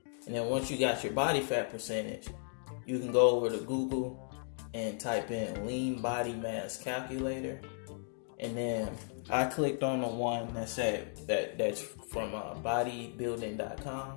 And then once you got your body fat percentage, you can go over to Google and type in lean body mass calculator. And then I clicked on the one that said that's from bodybuilding.com.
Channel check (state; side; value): silent; right; 54 dB below the other